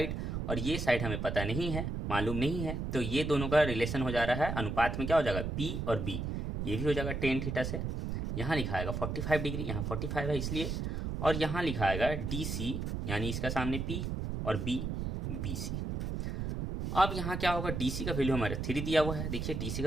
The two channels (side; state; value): right; noise; rumble, 3 dB below the sound